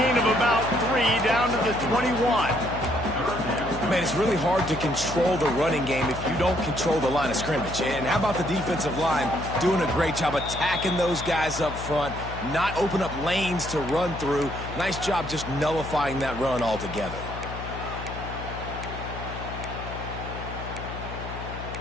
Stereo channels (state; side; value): noise; left; hum, 9 dB below the sound